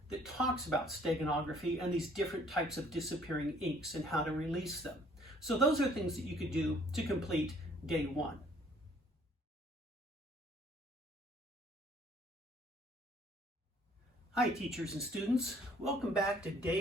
that talks about steganography and these different types of disappearing inks and how to release them. So those are things that you could do to complete day 1. Hi teachers and students, welcome back to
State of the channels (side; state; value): both; normal; correlation 0.60